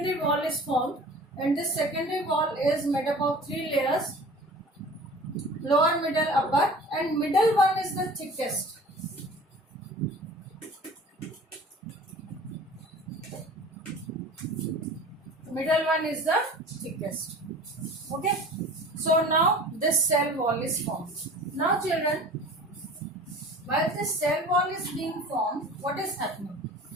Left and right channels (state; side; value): normal; both; correlation 0.42